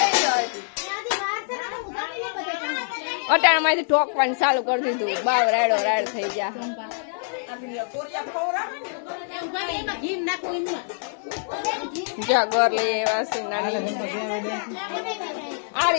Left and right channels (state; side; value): silent; right; 55 dB below the other